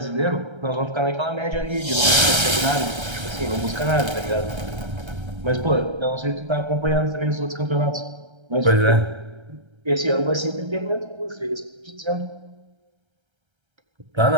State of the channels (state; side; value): late; left; 1.3 ms